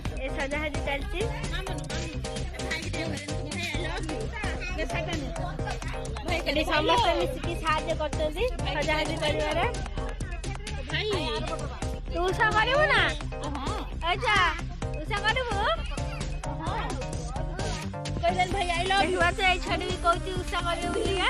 ये सजासजी चलती। समस्त मिसिकी साहाଯ୍य करछन्ती सजासजी करिवार। तू उषा करिबु ना? अच्छा उषा करिबु? कैलन भाई आई लव यू। बात ए छडी भी कहती उषा करिबु बोलिया।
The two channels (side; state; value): both; identical; correlation 1.00